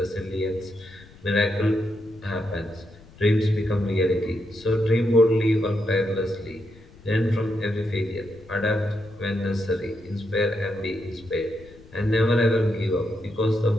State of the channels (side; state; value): left; noise; rumble, 23 dB below the sound